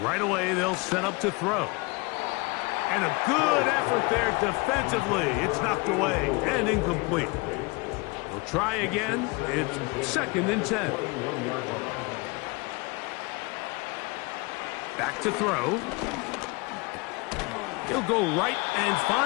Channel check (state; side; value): quieter; right; 27.1 dB